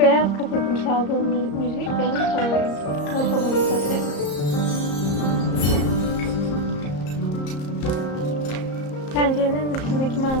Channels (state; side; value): late; right; 34 ms